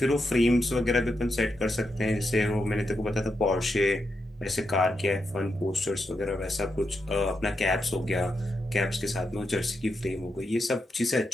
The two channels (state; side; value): normal; both; correlation 0.85